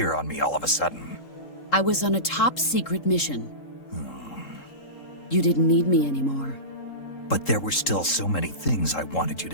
on me all of a sudden? I was on a top-secret mission. You didn't need me anymore. But there were still so many things I wanted you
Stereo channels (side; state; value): right; late; 3.7 ms